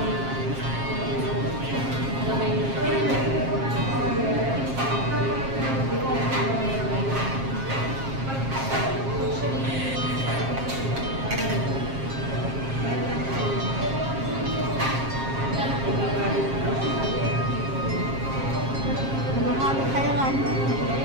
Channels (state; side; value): late; left; 7.5 ms